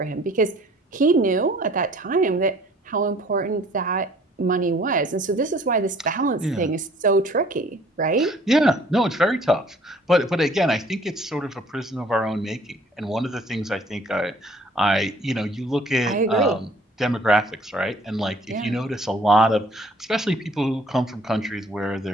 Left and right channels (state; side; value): normal; both; correlation 0.56